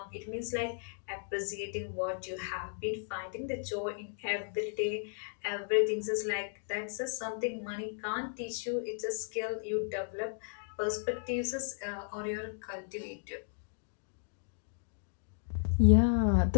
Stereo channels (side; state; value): right; silent; digital silence